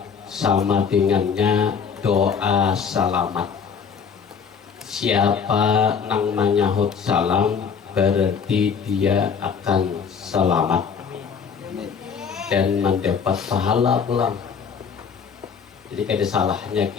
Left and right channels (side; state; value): right; quieter; 6.4 dB